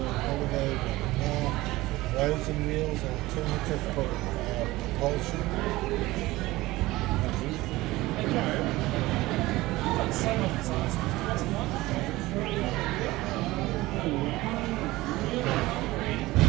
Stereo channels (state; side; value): quieter; left; 18.9 dB